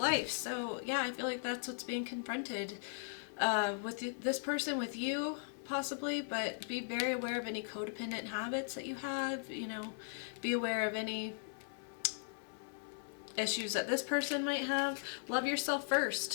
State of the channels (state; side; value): silent; right; digital silence